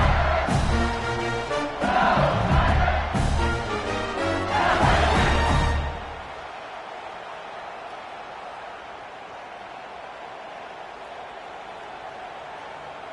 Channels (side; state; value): both; identical; correlation 1.00